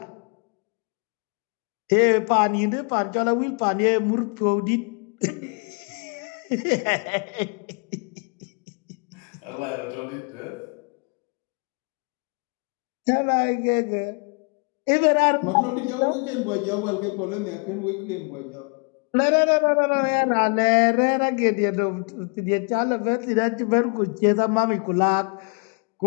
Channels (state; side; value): quieter; right; 35.8 dB